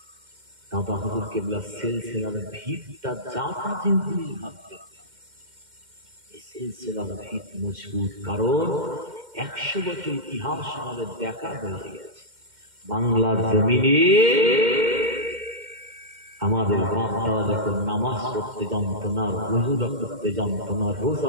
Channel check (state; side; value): late; left; 2.1 ms